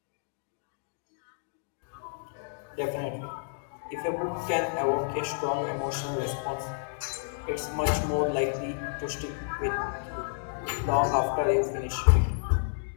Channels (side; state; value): right; silent; digital silence